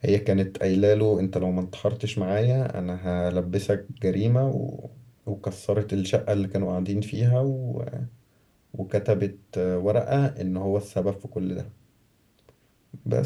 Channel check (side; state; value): both; identical; correlation 1.00